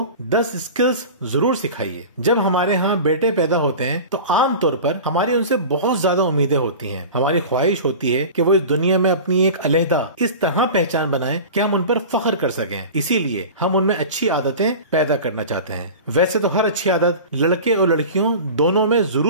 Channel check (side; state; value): both; inverted; correlation -0.34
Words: 10 اسکلز ضرور سکھائیے۔ جب ہمارے ہاں بیٹے پیدا ہوتے ہیں تو عام طور پر ہماری ان سے بہت زیادہ امیدیں ہوتی ہیں۔ ہماری خواہش ہوتی ہے کہ وہ اس دنیا میں اپنی ایک علیحدہ اس طرح پہچان بنائیں کہ ہم ان پر فخر کر سکیں۔ اسی لیے ہم ان میں اچھی عادتیں پیدا کرنا چاہتے ہیں۔ ویسے تو ہر اچھی عادت لڑکے اور لڑکیوں دونوں میں